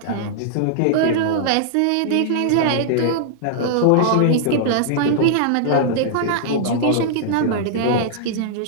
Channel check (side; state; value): both; different; correlation -0.01